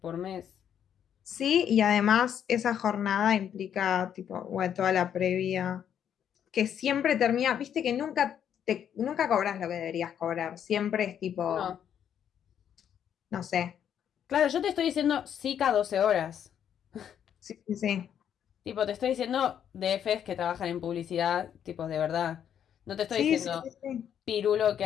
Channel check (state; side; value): quieter; right; 9.1 dB